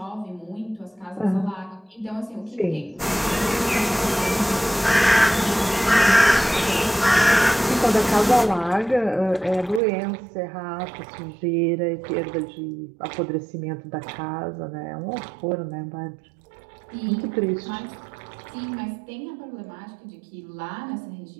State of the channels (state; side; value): drops out; left; at 9.8 s